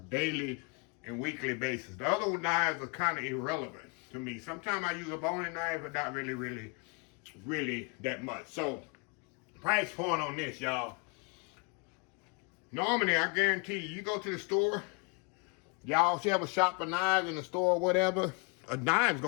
and weekly basis. The other knives are kind of irrelevant to me. Sometimes I use a boning knife, but not really that much. So, price point on this, y'all. Normally, I guarantee you go to the store, y'all should have a shop for knives in the store or whatever. A knife's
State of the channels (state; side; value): quieter; right; 33.6 dB